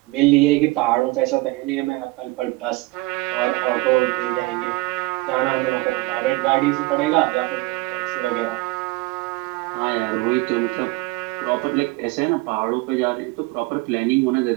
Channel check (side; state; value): left; quieter; 22.2 dB